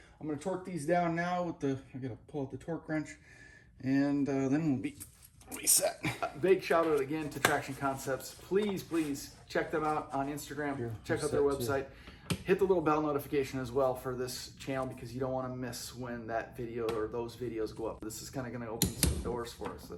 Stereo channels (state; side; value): identical; both; correlation 1.00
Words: I'm going to torque these down now with the. I got to pull out the torque wrench. And then we'll be reset. Big shout out again to Traction Concepts. Please check them out on Instagram. Check out their website. Hit the little bell notification as well for this channel, because you don't want to miss when that video or those videos go up. This is kind of going to open some doors for us.